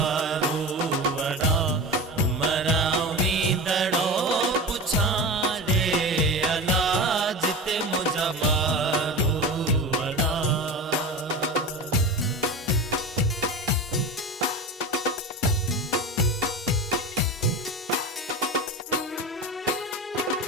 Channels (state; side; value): normal; both; correlation 0.27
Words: वड़ा। मरावींदड़ो पुछाड़े अलाज ते मुझा मारू वड़ा।